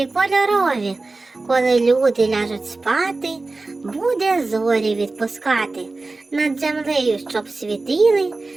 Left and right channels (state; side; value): quieter; left; 3.4 dB